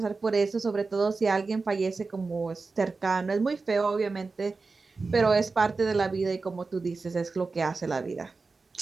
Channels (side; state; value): left; quieter; 4.1 dB